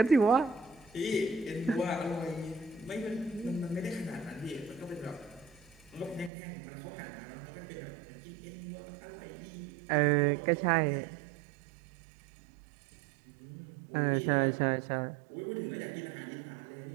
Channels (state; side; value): drops out; left; at 6.3 s